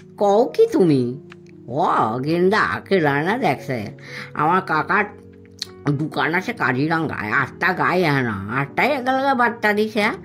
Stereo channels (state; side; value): identical; both; correlation 1.00